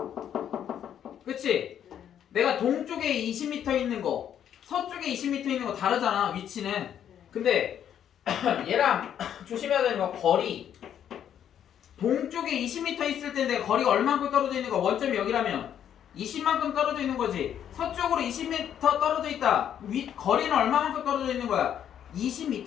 그치? 내가 동쪽에 20m 있는 거 서쪽에 20m 있는 거 다르잖아. 위치는. 근데 얘랑 조심해야 되는 거 거리. 동쪽에 20m 있을 텐데 거리가 얼마만큼 떨어져 있는 거? 원점이 여기라면 20만큼 떨어져 있는 거지. 서쪽으로 20m 떨어져 있다. 거리는 얼마만큼 떨어져 있는 거야?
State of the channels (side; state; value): right; quieter; 9.6 dB